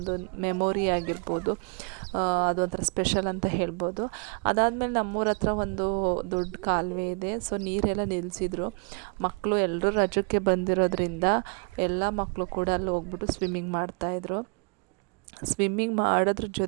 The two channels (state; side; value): quieter; left; 35.0 dB